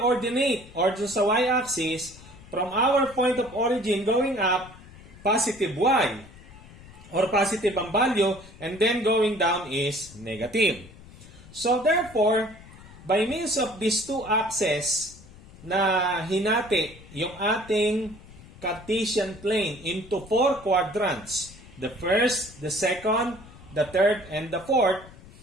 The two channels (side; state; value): left; noise; rumble, 20 dB below the sound